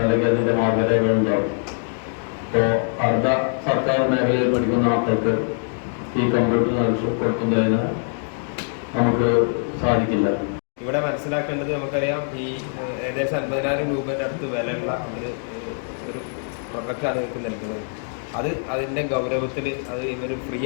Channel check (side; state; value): right; silent; 63 dB below the other